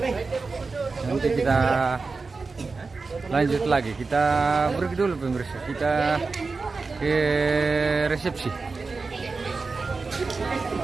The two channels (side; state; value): left; quieter; 4.2 dB